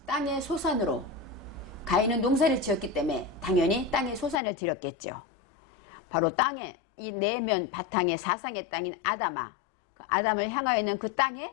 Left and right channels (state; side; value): drops out; right; at 4.4 s